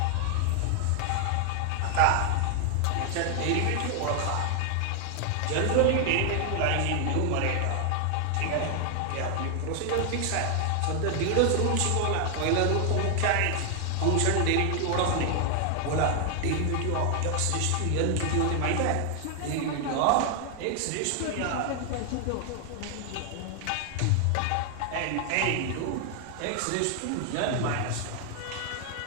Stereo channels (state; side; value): different; both; correlation 0.00